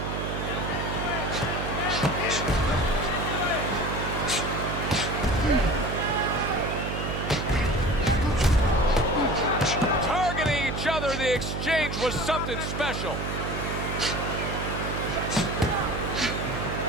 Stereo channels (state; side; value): noise; right; hum, 4 dB below the sound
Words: Targeting each other, the exchange was something special.